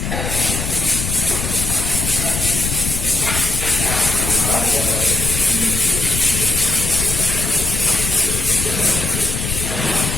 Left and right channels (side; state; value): left; noise; rumble, 4 dB below the sound